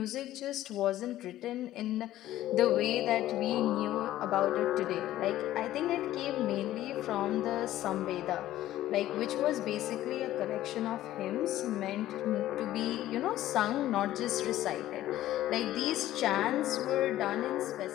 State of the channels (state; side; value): quieter; right; 14.0 dB